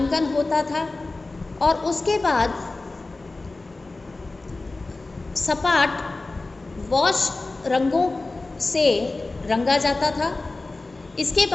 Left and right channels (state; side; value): quieter; right; 3.3 dB